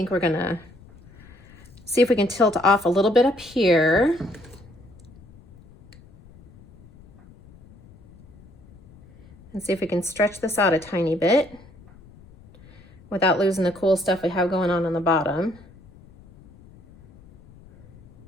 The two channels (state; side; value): noise; left; rumble, 24 dB below the sound